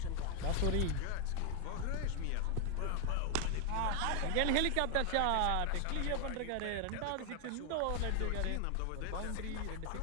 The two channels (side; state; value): both; different; correlation 0.00